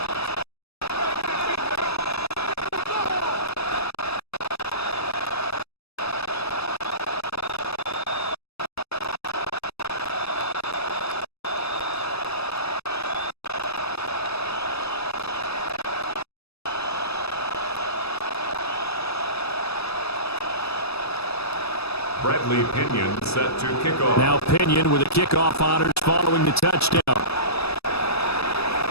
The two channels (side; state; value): right; late; 0.78 ms